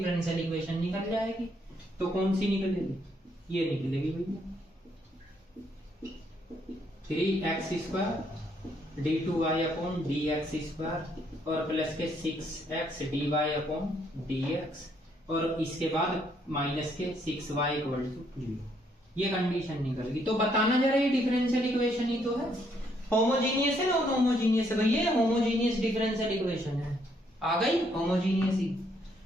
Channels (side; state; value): both; normal; correlation 0.71